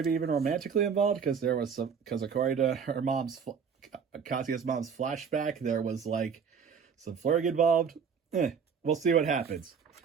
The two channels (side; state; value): left; quieter; 6.5 dB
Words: even romantically involved, because according to her Kazuya's mom's flashback, there was like some flirting involved. We'll see what happens.